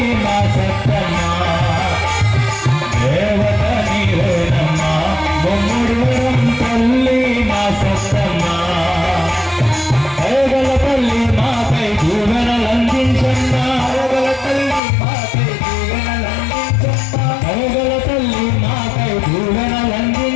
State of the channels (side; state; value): right; drops out; at 14.8 s